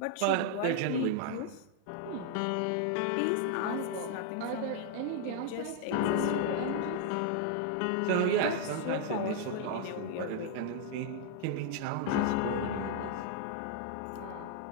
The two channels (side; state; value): both; different; correlation 0.00